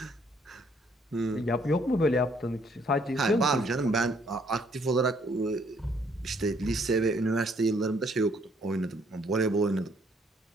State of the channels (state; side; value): normal; both; correlation 0.66